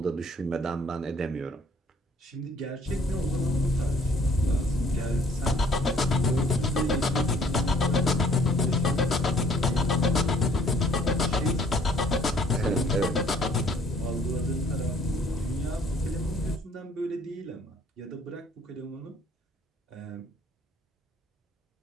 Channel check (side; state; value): both; normal; correlation 0.59